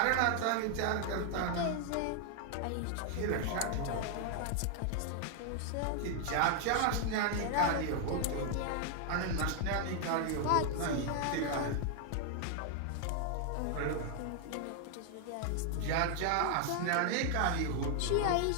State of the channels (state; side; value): different; both; correlation 0.00